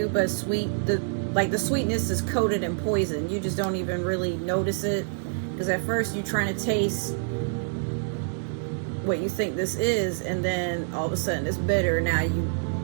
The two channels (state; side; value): silent; left; digital silence